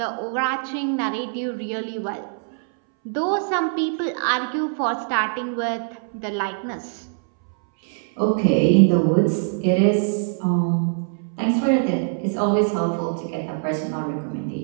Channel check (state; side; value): silent; left; 63 dB below the other